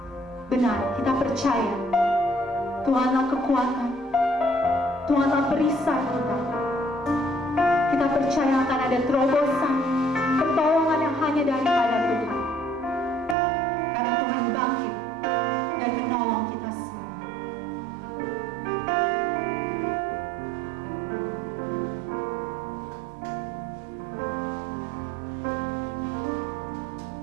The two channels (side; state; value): left; drops out; at 13.4 s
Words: Benar, kita percaya Tuhanlah kekuatan, Tuhanlah perisai kita. Kita percaya akan ada terobosan, pertolongan yang hanya daripada Tuhan. Karena Tuhan bangkit dan menolong kita semua.